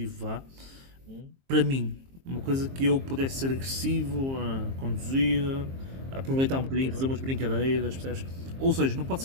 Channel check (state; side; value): late; left; 22 ms